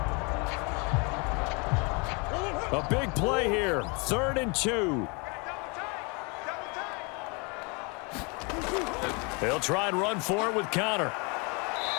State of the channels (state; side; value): quieter; right; 31.3 dB